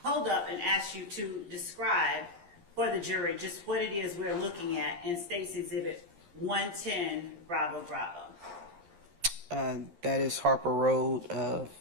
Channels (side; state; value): left; late; 12 ms